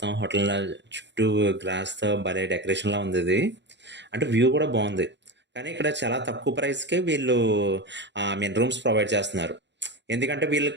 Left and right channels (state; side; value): late; left; 0.52 ms